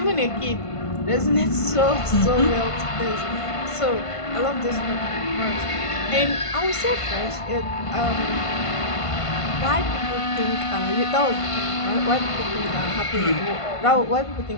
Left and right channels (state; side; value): late; right; 1.5 ms